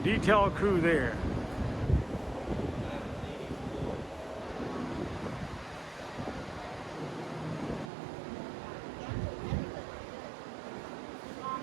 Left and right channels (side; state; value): left; drops out; at 7.9 s